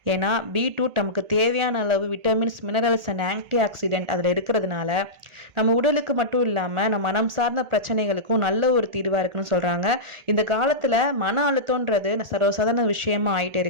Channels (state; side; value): late; left; 1.8 ms